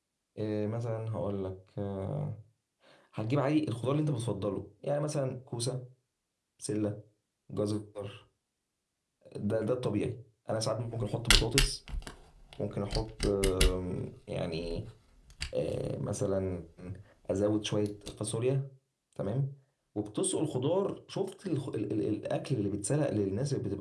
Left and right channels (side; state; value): both; identical; correlation 1.00